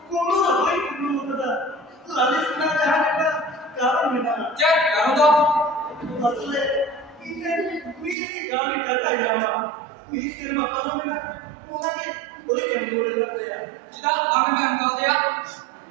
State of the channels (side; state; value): left; drops out; at 8.2 s